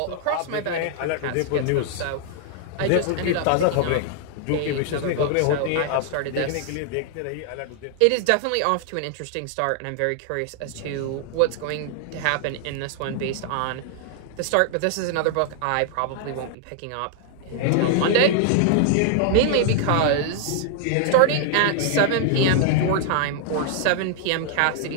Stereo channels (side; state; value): both; different; correlation -0.01